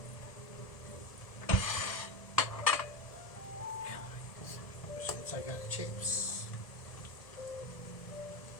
Take out the chips.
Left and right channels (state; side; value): late; right; 1.0 ms